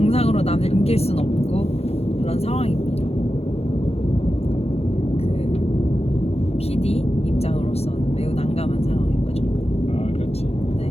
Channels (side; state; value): right; late; 0.30 ms